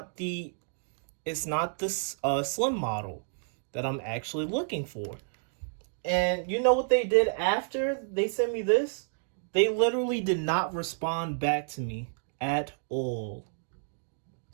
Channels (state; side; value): silent; left; digital silence